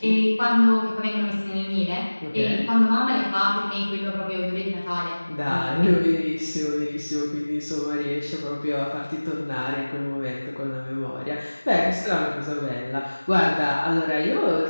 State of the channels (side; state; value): both; inverted; correlation -1.00